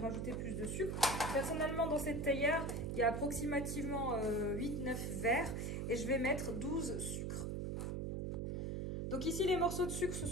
plus de sucre. Personnellement, dans cette théière, il y a approximativement 8-9 verres et je vais mettre 12 sucres. Donc ici, les morceaux de sucre, ce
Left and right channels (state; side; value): noise; right; hum, 2 dB below the sound